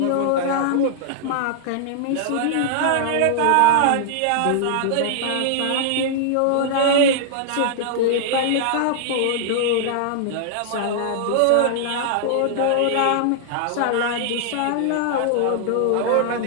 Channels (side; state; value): both; different; correlation -0.01